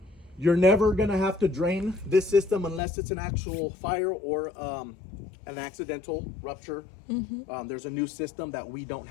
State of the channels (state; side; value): drops out; right; at 2.8 s